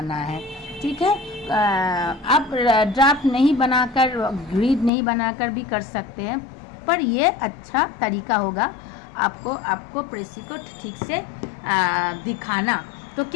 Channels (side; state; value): right; drops out; at 4.9 s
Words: है, ठीक है. आप ड्राफ्ट नहीं बनाकर, ग्रिड नहीं बनाकर भी कर सकते हैं, पर ये अच्छा तरीका होगा आपको प्रेसी को ठीक से दिखाना. तो